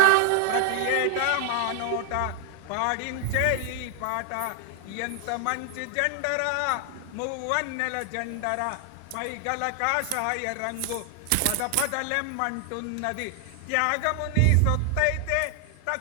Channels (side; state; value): both; different; correlation 0.00